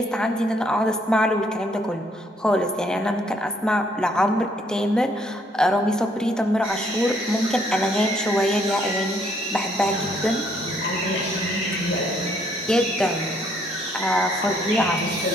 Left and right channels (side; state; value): both; normal; correlation 0.67